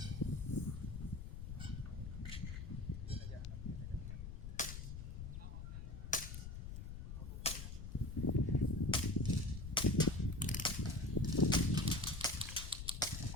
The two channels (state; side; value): noise; left; rumble, 7 dB below the sound